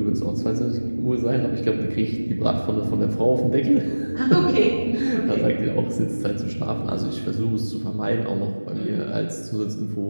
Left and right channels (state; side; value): inverted; both; correlation -1.00